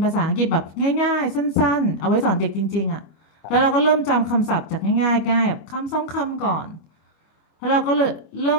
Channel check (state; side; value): late; right; 25 ms